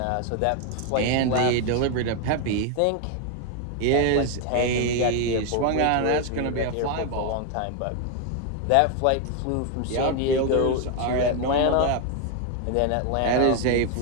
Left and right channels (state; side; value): different; both; correlation 0.01